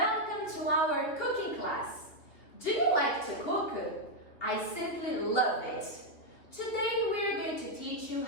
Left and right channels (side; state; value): right; late; 3.1 ms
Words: to our cooking class. Do you like to cook? I simply love it. Today we're going to teach you